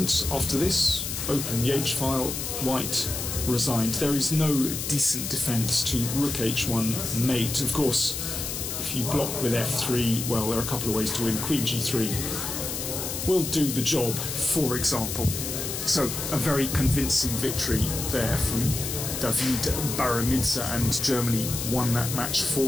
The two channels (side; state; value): left; noise; hiss, 4 dB below the sound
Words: after this, open the h-file, white resigned. There is no decent defence to rook h1 mate. Of course, if you block with f3, well, there are a couple of ways to win. Queen g3 will do the job, for example. So a very convincing victory there from David Baramidze, and Germany won that match